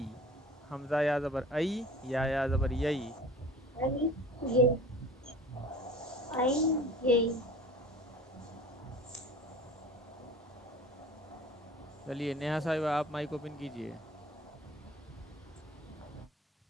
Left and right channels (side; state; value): both; normal; correlation 0.43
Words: حمزہ یا زبر ای، یا زبر یئی. آئی یئی. آئی یئی. چلیے نیہا صاحبہ آپ مائک اوپن کیجئے.